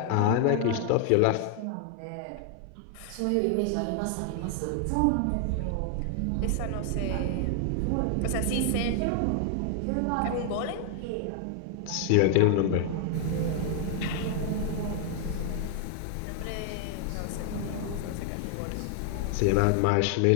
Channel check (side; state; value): both; different; correlation 0.00